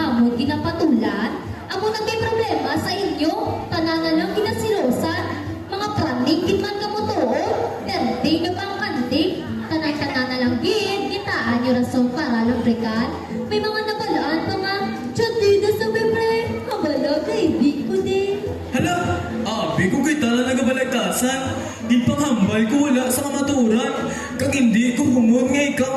ginapatulan. Amo na may problema sa inyo, tanana lang ginasilosan. Mga praning kitman ka mo toon, derde nyo pang kandik. Tanay-tanana lang gid, gitaan nyo rason para lumbrikan. May mga nabalaan pa nga, tiyadi na sa bebre, kabala kaibig ko din. Hala, abi ko kita na nagabalagtasan. Di panghambal ko wala sa kamaturan. Kag hindi ko humon nga ikaw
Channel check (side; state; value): both; identical; correlation 1.00